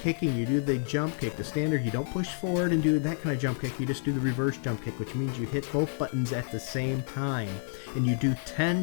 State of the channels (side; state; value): right; silent; digital silence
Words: You do the jump kick, the standard. You don't push forward and do that kind of jump kick. You just do the reverse jump kick, which means you hit both buttons at the same time. And you do